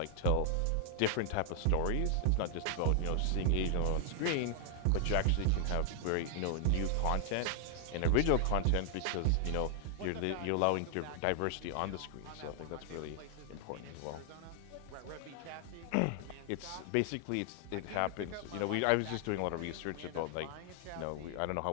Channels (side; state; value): both; different; correlation 0.00